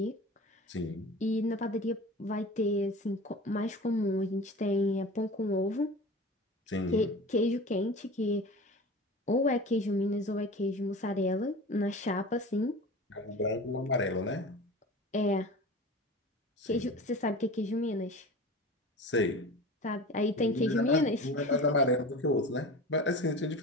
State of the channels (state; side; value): normal; both; correlation 0.35